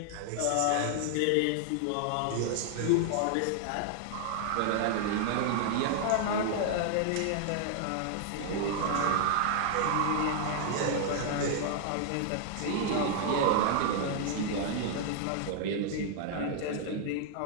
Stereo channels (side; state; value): both; different; correlation 0.00